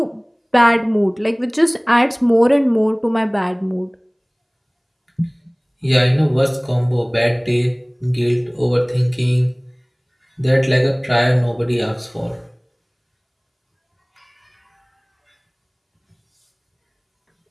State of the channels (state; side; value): identical; both; correlation 1.00